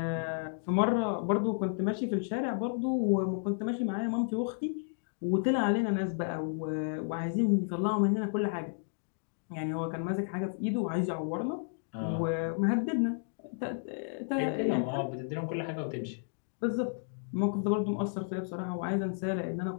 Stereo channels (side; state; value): right; silent; digital silence